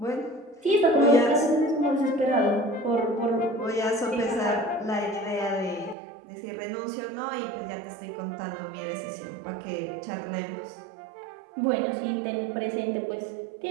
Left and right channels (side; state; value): left; drops out; at 6.0 s